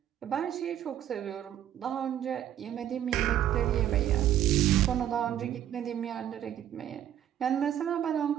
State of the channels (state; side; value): quieter; left; 11.0 dB